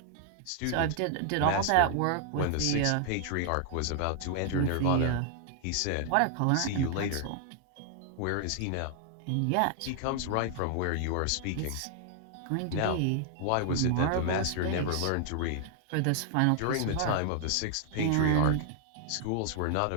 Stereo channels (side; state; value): both; different; correlation 0.00